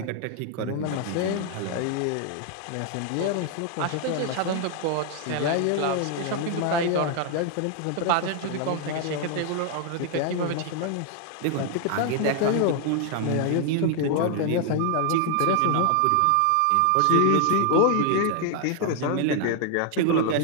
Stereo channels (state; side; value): different; both; correlation 0.00